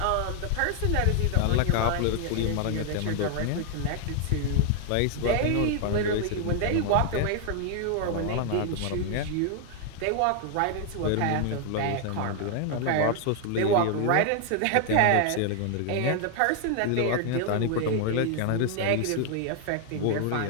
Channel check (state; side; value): different; both; correlation 0.00